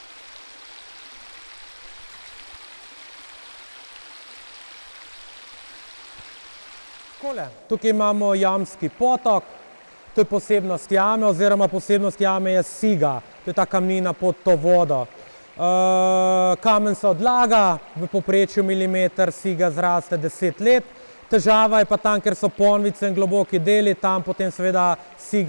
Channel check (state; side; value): inverted; both; correlation -1.00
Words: Tukaj imamo jamski potok, to je posebnost jame, oziroma posebnost jame je siga, to je ta kamnina pod to vodo. Kamen se odlaga, v povprečju milimeter siga zraste 10 let. Težava je pa tam, ker so ponvice in globoki deli, tam potem seveda